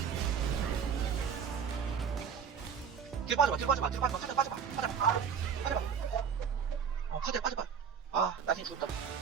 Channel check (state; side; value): quieter; left; 7.0 dB